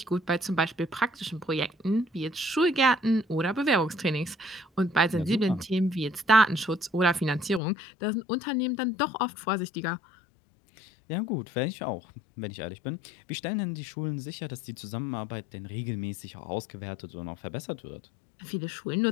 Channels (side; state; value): right; drops out; at 7.6 s